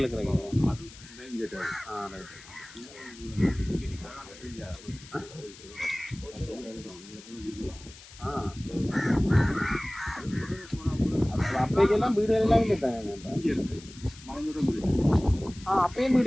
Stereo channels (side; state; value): left; noise; hiss, 19 dB below the sound